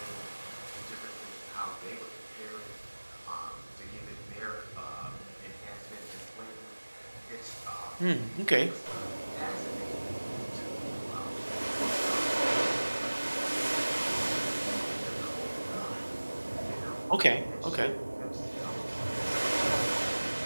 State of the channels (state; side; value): inverted; both; correlation -1.00